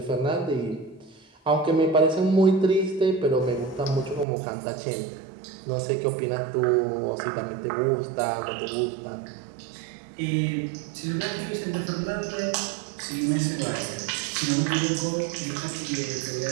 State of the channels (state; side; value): drops out; left; at 4.2 s